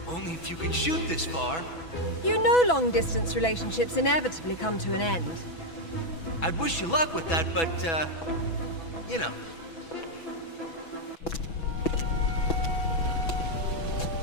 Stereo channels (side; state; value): right; late; 6.1 ms